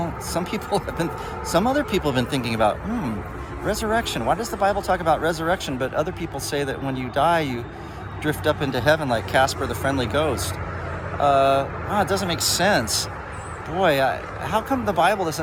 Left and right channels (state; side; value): identical; both; correlation 1.00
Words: some other people have been thinking about, resurrection. Why does the Bible talk about resurrection? But other people say that when you die, you drift up into heaven like Casper the Friendly Ghost. It doesn't make sense. Boy, how come the Bible